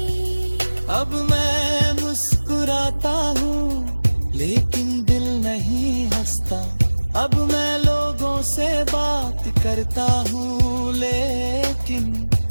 अब मैं मुस्कुराता हूँ लेकिन दिल नहीं हंसता, अब मैं लोगों से बात करता हूँ लेकिन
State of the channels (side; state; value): both; inverted; correlation -1.00